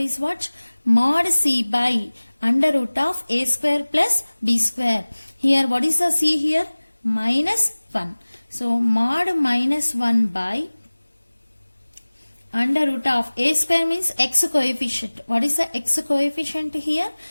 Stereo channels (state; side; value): inverted; both; correlation -1.00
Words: what? Mod c by under root of a square plus b square. Here what is the c here? Minus 1. So mod minus 1 by under root of a square means x coefficient. What is the x coefficient here?